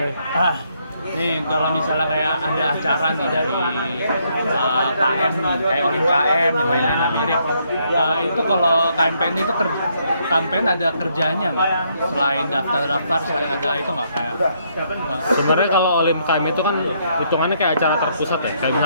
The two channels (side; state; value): both; inverted; correlation -0.73